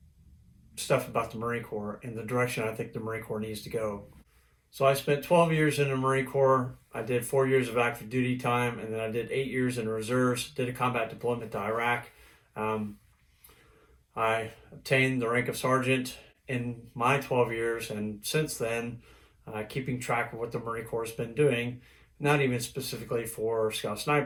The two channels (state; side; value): identical; both; correlation 1.00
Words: stuff about the Marine Corps and the direction I think the Marine Corps needs to go. So I spent 12 years in the Marine Corps. I did 4 years of active duty time, and then I did 8 years in the reserves, did a combat deployment to Iraq. Um, I obtained the rank of sergeant in my 12 years, and since then, keeping track of what the Marine Corps has been doing, not even specifically for Scout